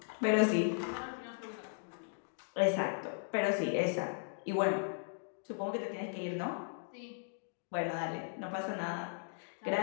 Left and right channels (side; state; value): right; silent; digital silence